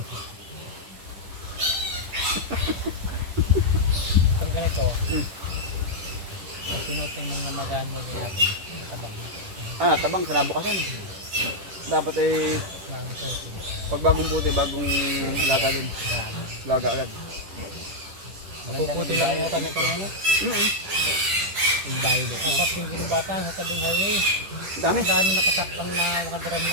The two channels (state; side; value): late; left; 10 ms